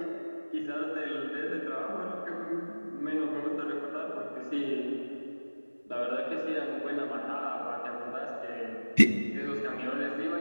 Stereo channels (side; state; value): both; inverted; correlation -1.00